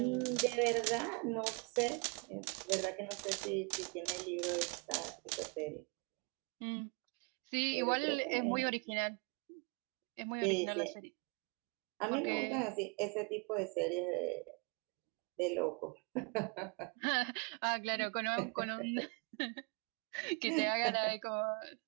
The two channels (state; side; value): quieter; left; 34.3 dB